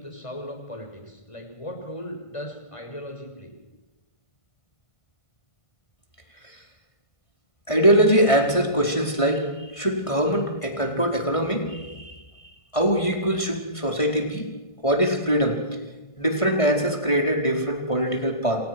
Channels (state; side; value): late; right; 1.5 ms